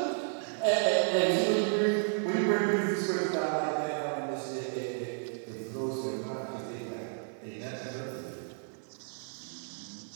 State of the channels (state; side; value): silent; left; digital silence